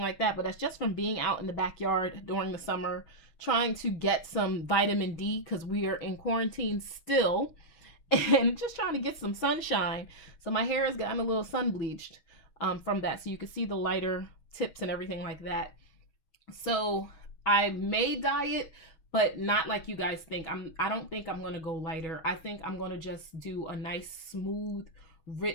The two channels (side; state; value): right; late; 6.3 ms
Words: like that, but that's just from being out in the backyard during the summer, trying to get some vitamin D, because we are in quarantine still, and just trying to get some sunshine. So my hair has gotten a little sun bleached from that. So you can see the lighter tips and everything like that. So I may dye it, but not like you guys think. I don't think I'm going to go lighter. I think I'm going to just do a nice, smooth,